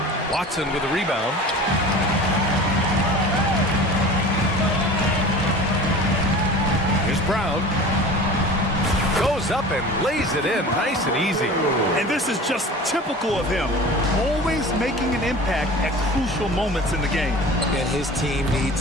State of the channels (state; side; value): normal; both; correlation 0.38